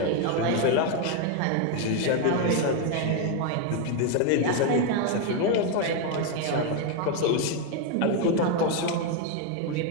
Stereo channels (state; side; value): different; both; correlation 0.01